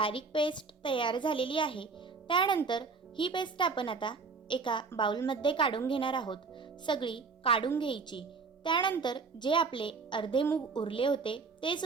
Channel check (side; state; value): left; quieter; 4.7 dB